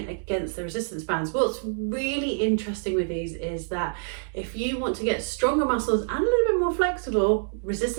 against the resistance bands. What's really interesting with these is that if you want to get stronger muscles and a little bit more flexible,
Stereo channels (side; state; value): left; silent; digital silence